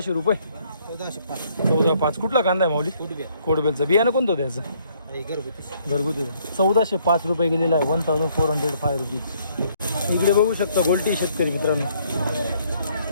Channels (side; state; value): both; inverted; correlation -0.66